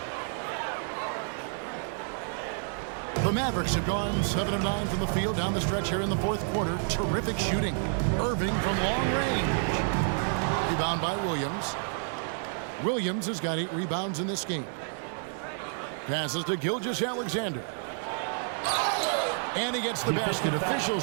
The Mavericks have gone 7 of 9 from the field down the stretch here in the fourth quarter. Terrific shooting. Irving from long range. Rebound by Williams. Williams has got 8 rebounds in this game. Passes to Gilgeous-Alexander. And he gets the basket.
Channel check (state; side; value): silent; left; 58 dB below the other